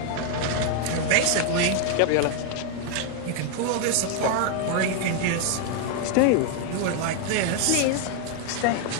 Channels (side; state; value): both; different; correlation 0.00